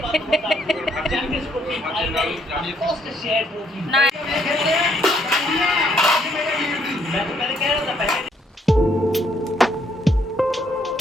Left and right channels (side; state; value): both; normal; correlation 0.69